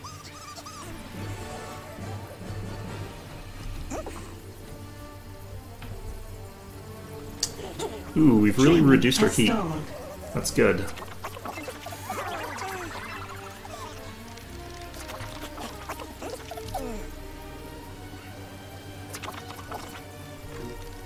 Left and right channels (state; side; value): identical; both; correlation 1.00